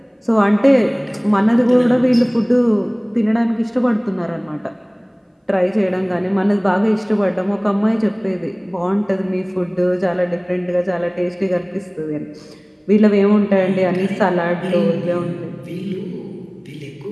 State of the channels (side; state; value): both; identical; correlation 1.00